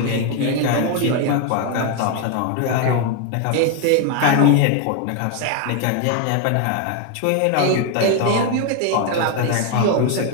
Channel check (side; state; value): both; different; correlation 0.01